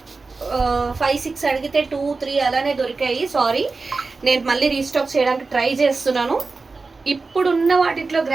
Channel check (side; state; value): left; quieter; 4.0 dB